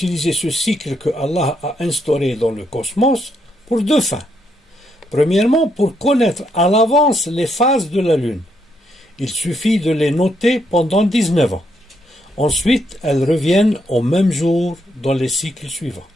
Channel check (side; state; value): both; normal; correlation 0.77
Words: ce cycle que Allah a instauré dans le cosmos pour deux fins. Premièrement, pour connaître à l'avance les phases de la Lune. Il suffit de les noter pendant 19 ans. Ensuite, elles reviennent au même jour dans les cycles suivants.